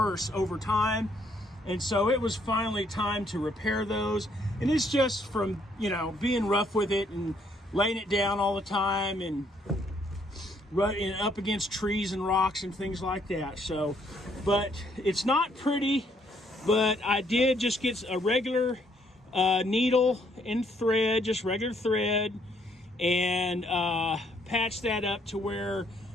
over time. And so it was finally time to repair those. And it's just from, you know, being rough with it and laying it down all the time and running up against trees and rocks and things like that. So, but it's not pretty, but I did just get a regular needle and thread, just regular thread, and patch that up to where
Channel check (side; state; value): both; normal; correlation 0.68